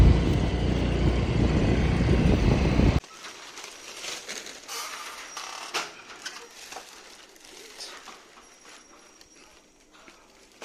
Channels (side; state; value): both; identical; correlation 1.00